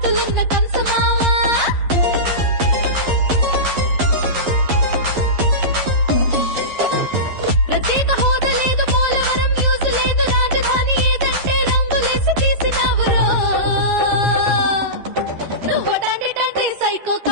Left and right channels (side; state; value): left; late; 11 ms